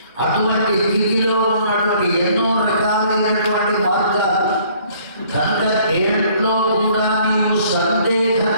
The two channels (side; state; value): both; inverted; correlation -0.59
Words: అటువంటి స్థితిలో ఉన్నటువంటి ఎన్నో రకాలైనటువంటి మార్గాలు. కనుక దేంట్లో కూడా నీవు